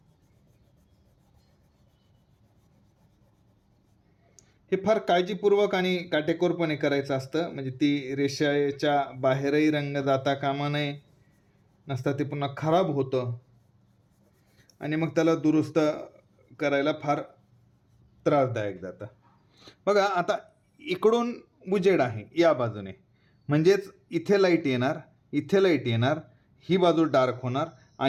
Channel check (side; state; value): both; identical; correlation 1.00